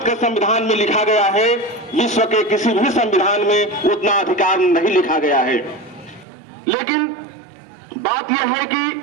के संविधान में लिखा गया है, विश्व के किसी भी संविधान में उतना अधिकार नहीं लिखा गया है। लेकिन बात यह है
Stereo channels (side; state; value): left; drops out; at 6.2 s